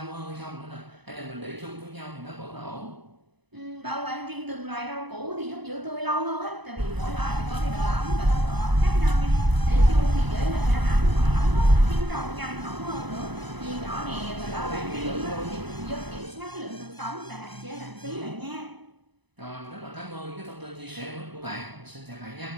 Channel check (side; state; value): left; late; 0.99 ms